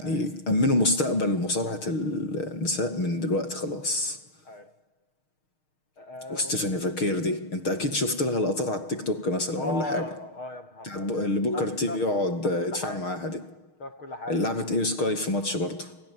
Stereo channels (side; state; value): right; late; 6.5 ms